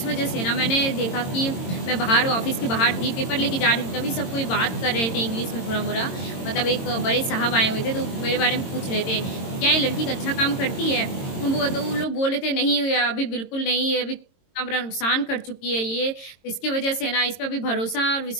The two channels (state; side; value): late; right; 22 ms